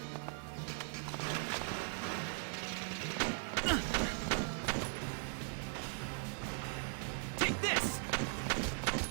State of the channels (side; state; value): left; silent; 52 dB below the other